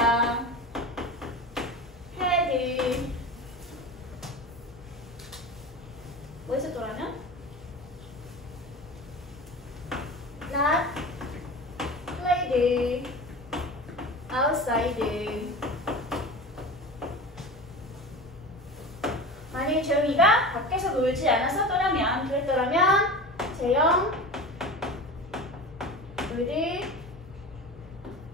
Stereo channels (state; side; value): normal; both; correlation 0.31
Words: had 뭐 있었더라면? not played outside. 만약에 재영이가 밖에서 놀지 않았었더라면, 그랬더라면 재영 would